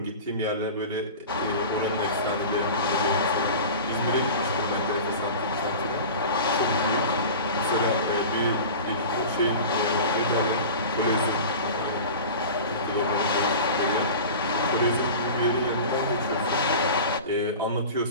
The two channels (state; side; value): inverted; both; correlation -0.34